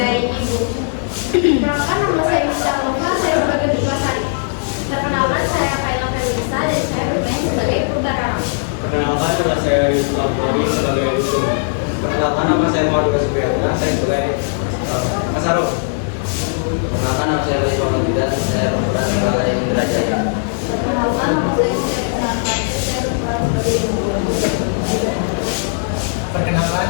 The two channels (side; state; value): right; silent; 67 dB below the other